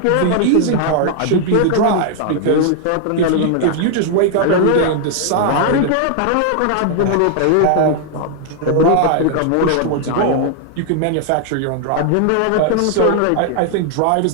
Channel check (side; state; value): both; different; correlation 0.00